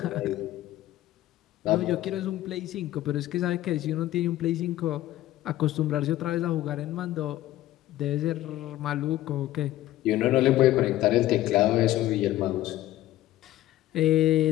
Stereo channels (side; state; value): right; quieter; 14.7 dB